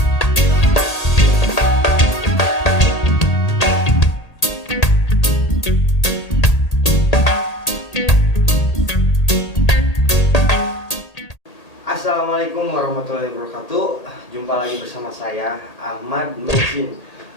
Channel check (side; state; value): right; late; 1.8 ms